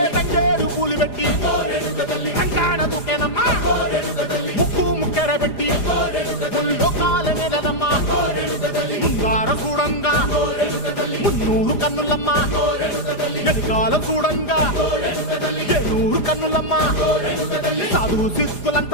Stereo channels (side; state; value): right; late; 4.9 ms